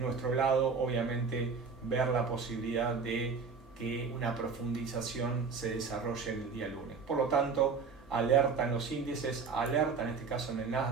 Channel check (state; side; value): quieter; left; 5.2 dB